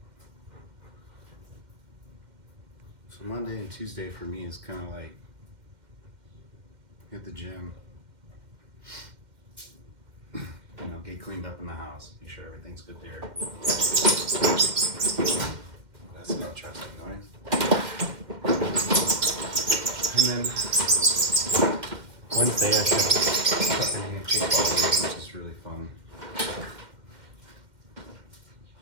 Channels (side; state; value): left; late; 2.1 ms